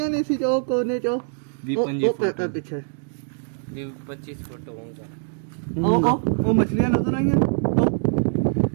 ਨੇ ਸੀ ਜੋ ਕੋਨੇ ਚੋਂ ਵੀ ਉਹ ਪੈਪਾ ਪਿੱਛੇ ਵੀ 25 ਫੁੱਟ ਹੋਊਗਾ ਉਹ ਮੱਛਲੀਆਂ ਨਜ਼ਰ ਆਈਆਂ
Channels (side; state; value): left; silent; digital silence